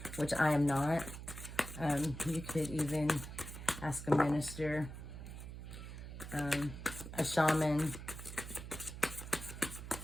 which I am not, you could even ask a minister, a shaman,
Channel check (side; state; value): right; noise; hum, 10 dB below the sound